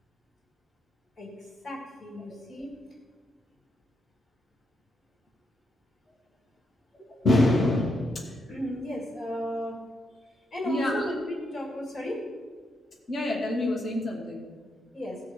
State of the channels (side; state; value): both; normal; correlation 0.80